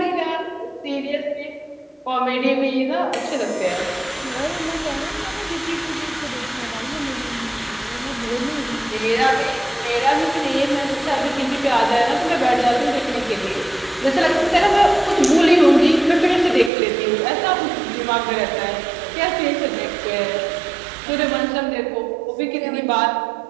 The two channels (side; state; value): left; drops out; at 16.7 s